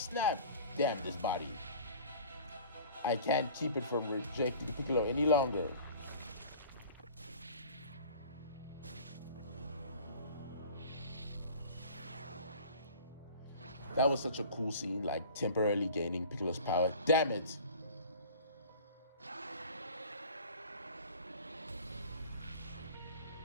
Damn, this body. I can't keep it from rejecting Piccolo any longer. That was such a cool scene, like temporarily gaining Piccolo's power. Damn it!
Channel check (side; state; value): both; inverted; correlation -0.44